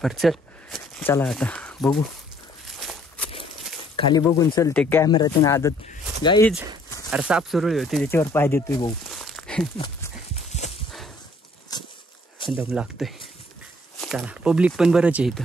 पर चला आता बघू खाली बघून चलते कॅमेरातून आदत गाईज. अरे साप सुरळी होती त्याच्यावर पाय देतोय भाऊ. दम लागतोय. चला पब्लिक पण बरंच आहे इथं.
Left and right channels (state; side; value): normal; both; correlation 0.61